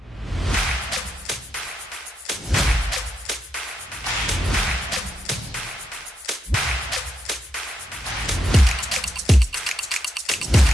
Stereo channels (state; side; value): normal; both; correlation 0.82